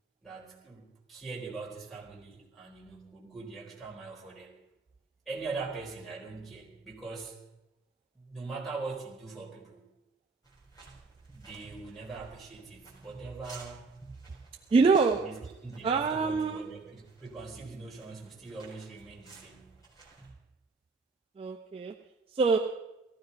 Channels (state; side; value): quieter; left; 4.1 dB